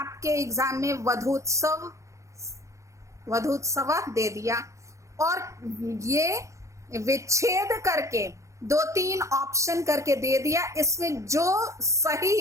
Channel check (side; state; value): left; late; 0.15 ms